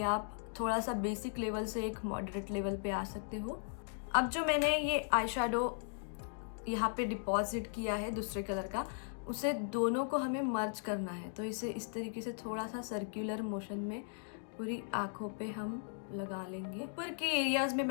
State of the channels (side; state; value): right; silent; digital silence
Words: आप थोड़ा सा बेसिक लेवल से एक मॉडरेट लेवल पे आ सकते हो। अब जो मैंने ये आई शेडो यहाँ पे डिपॉजिट किया है दूसरे कलर का, उसे दोनों को हमें मर्ज करना है। तो इसे इस तरीके से थोड़ा सा सर्कुलर मोशन में पूरी आँखों पे हम लगा लेंगे। ऊपर के एरियाज़ में